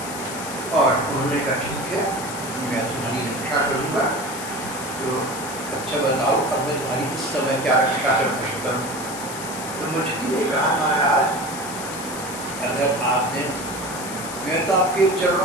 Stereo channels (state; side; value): noise; left; hiss, 10 dB below the sound